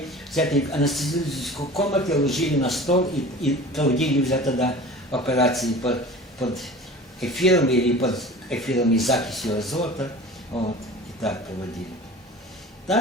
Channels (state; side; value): normal; both; correlation 0.39